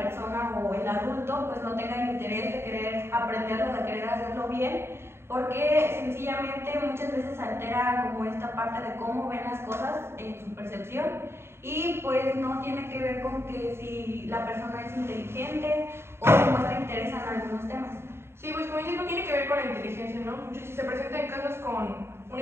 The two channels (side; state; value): left; late; 0.12 ms